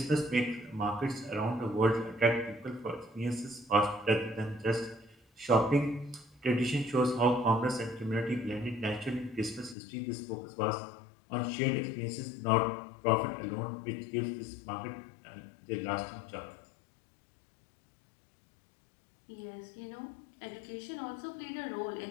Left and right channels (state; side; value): drops out; right; at 9.8 s